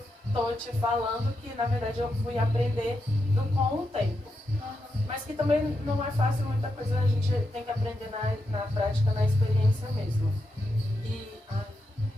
estou te falando, que na verdade eu fui aprender com o tempo. Mas que também não é fácil, muita coisa a gente tem que aprender na prática, na experiência mesmo. E... a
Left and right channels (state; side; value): normal; both; correlation 0.85